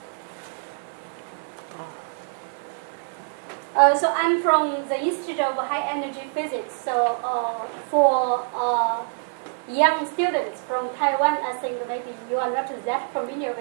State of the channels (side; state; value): left; silent; digital silence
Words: So I'm from the Institute of High Energy Physics. So for young students from Taiwan, I think maybe you are not that familiar